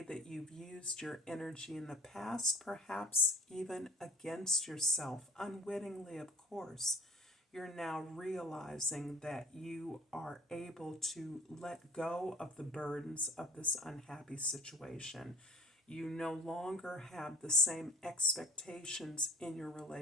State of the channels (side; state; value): both; normal; correlation 0.49